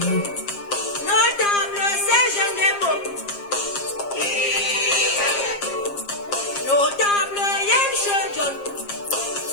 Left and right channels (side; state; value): right; late; 7.4 ms